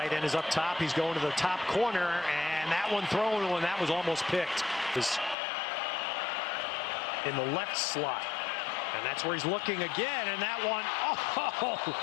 end, is up top. He's going to the top corner, and that one thrown when that was almost picked. Is in the left slot. And that's where he's looking again, and that one,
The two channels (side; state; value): right; drops out; at 5.4 s